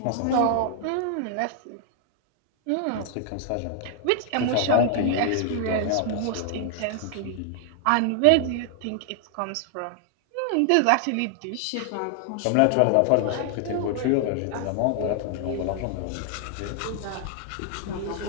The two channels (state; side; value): different; both; correlation 0.00